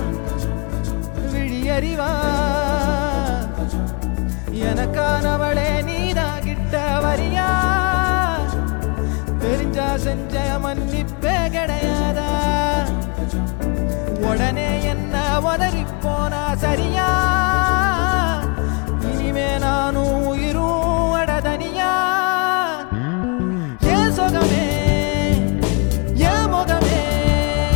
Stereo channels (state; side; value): quieter; right; 33.5 dB